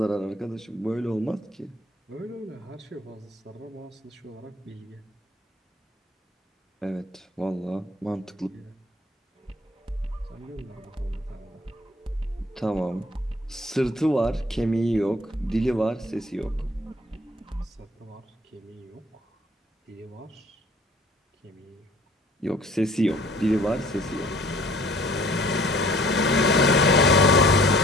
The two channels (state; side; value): normal; both; correlation 0.55